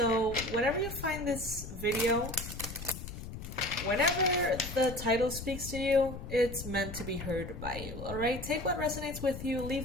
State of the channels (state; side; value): noise; left; rumble, 9 dB below the sound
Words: whenever you find this video, whenever the title speaks to you, it's meant to be heard by you, alright? Take what resonates with you,